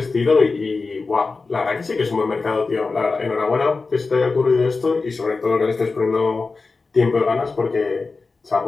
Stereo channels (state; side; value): quieter; right; 4.1 dB